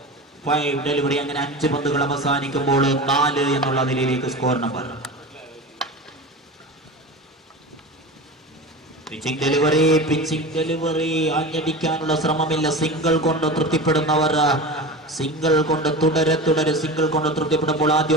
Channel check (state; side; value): normal; both; correlation 0.29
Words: 5 delivery. അങ്ങനെ 5 പന്തുകൾ അവസാനിക്കുമ്പോൾ 4 എന്നുള്ള നിലയിലേക്ക് സ്കോർ നമ്പർ. പിച്ചിംഗ് ഡെലിവറി ആഞ്ഞടിക്കാനുള്ള ശ്രമമില്ല. സിംഗിൾ കൊണ്ട് തൃപ്തിപ്പെടുന്നവർ സിംഗിൾ കൊണ്ട് തുടരെ സിംഗിൾ കൊണ്ട് തൃപ്തിപ്പെടുമ്പോൾ